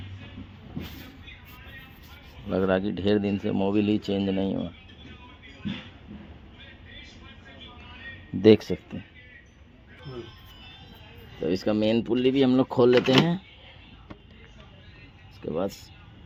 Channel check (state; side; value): identical; both; correlation 1.00